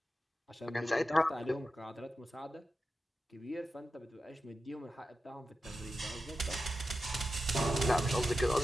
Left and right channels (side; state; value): both; normal; correlation 0.91